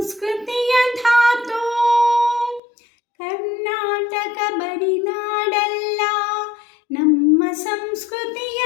ಧಾತು. ಕರ್ನಾಟಕ ಬರಿನಾಡಲ್ಲ ನಮ್ಮ ಸಂಸ್ಕೃತಿಯ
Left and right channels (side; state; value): right; drops out; at 2.6 s